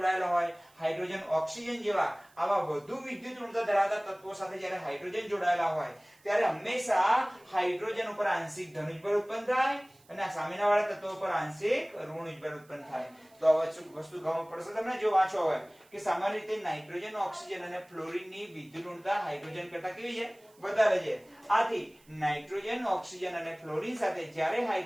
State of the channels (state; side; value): noise; right; hiss, 30 dB below the sound